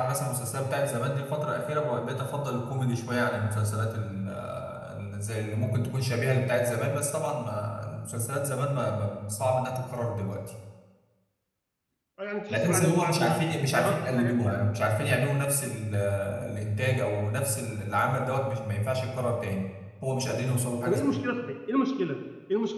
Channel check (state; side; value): identical; both; correlation 1.00